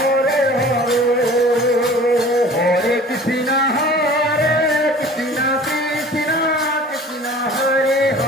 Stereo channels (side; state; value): both; normal; correlation 0.45